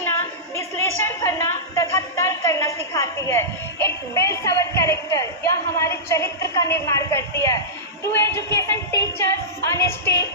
विश्लेषण करना तथा तर्क करना सिखाती है। इट बिल्ड्स अवर कैरेक्टर, यह हमारे चरित्र का निर्माण करती है। True education teachers honesty,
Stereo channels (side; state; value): both; normal; correlation -0.16